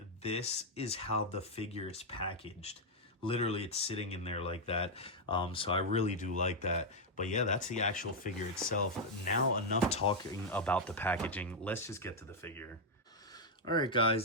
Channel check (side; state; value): both; normal; correlation -0.01